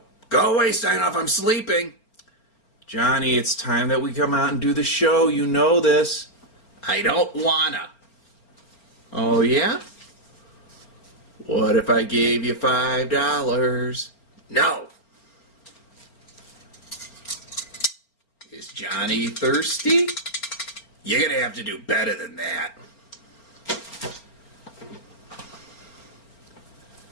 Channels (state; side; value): late; right; 4.4 ms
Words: Go away, Steinhoff, I'm sleeping. Johnny, it's time that we come out and do the show. You know this. I don't wanna. Oh, yeah? What if I gave you $5? No. Is Johnny thirsty? You're gonna have to do better than that.